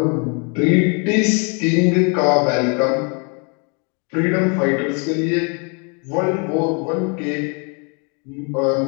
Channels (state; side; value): quieter; right; 35.1 dB